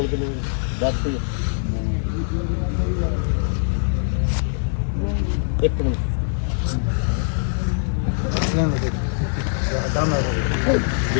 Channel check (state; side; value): silent; right; digital silence